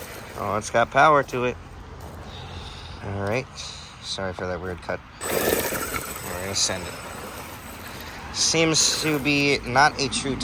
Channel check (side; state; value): both; identical; correlation 1.00